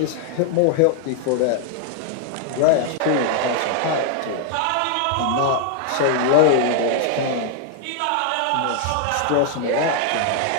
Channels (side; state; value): both; different; correlation 0.00